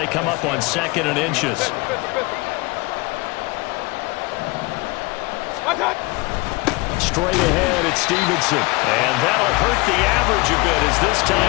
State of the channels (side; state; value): right; quieter; 24.6 dB